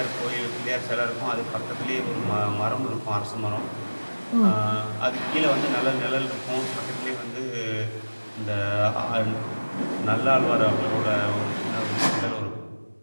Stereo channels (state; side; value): inverted; both; correlation -1.00